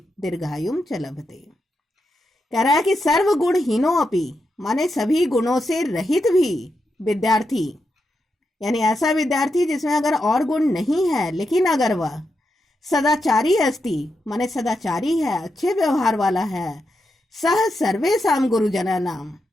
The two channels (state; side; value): normal; both; correlation 0.85